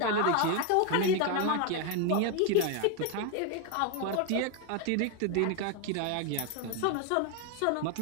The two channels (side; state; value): both; different; correlation 0.01